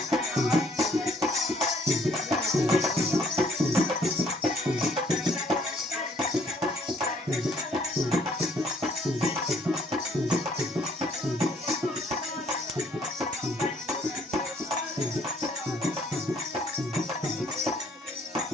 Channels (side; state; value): both; normal; correlation 0.63